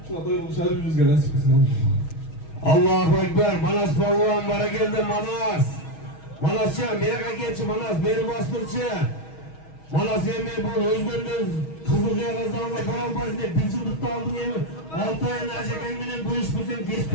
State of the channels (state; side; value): late; right; 6.3 ms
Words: Şuna doyulu şahri yüzge nasip etsin. Allahu Ekber. Manas Balvan bana geldi Manas. Manascan meraka geçi Manas beri bastırçı. Manas yemeği bu özgürlüğünüz Kızılcaya kazanla param bazında bir yıllıkta aldın yemeği. 6 ayın acıkenginin bu iş bizim geç